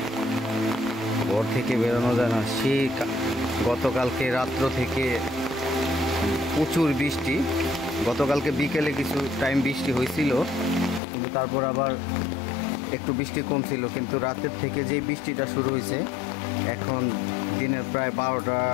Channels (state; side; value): drops out; right; at 11.0 s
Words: ঘর থেকে বেরোনো যায় না। সেই গতকালকে রাত্র থেকে প্রচুর বৃষ্টি। গতকালকে বিকেলে কিছু টাইম বৃষ্টি হয়েছিল, কিন্তু তারপর আবার একটু বৃষ্টি কম ছিল। কিন্তু রাতের থেকে যে বৃষ্টিটা শুরু হয়েছে, এখন দিনের প্রায়